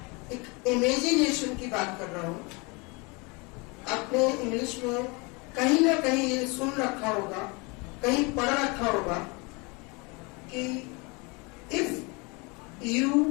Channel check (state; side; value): quieter; right; 28.6 dB